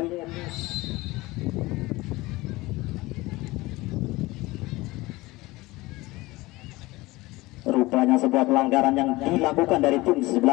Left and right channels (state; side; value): quieter; right; 20.6 dB